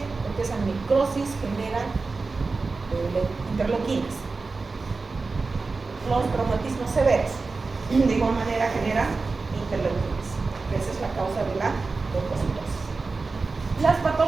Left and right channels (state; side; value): quieter; left; 4.0 dB